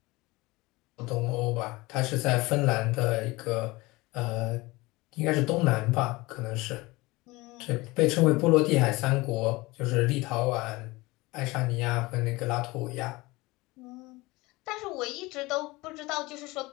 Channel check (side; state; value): right; quieter; 21.9 dB